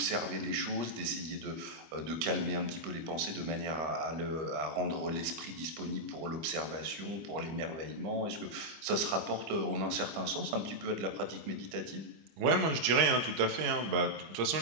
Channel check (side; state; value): left; late; 25 ms